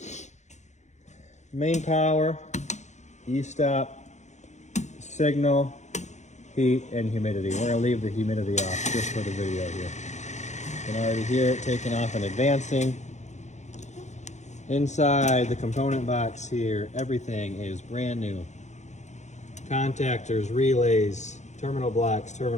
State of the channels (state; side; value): late; right; 0.34 ms